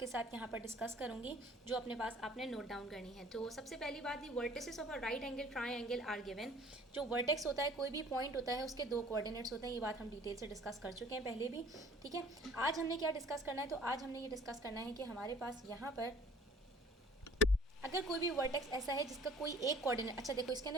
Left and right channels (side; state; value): both; normal; correlation 0.52